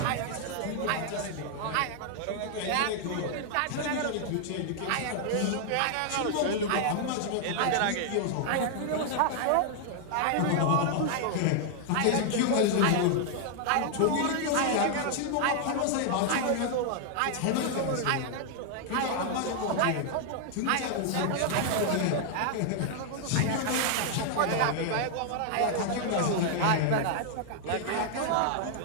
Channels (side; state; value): both; different; correlation 0.00